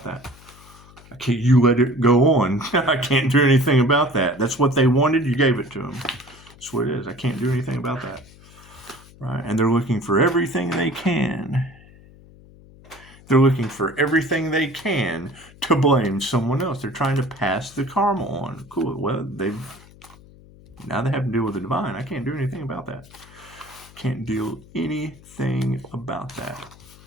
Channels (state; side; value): noise; left; hum, 23 dB below the sound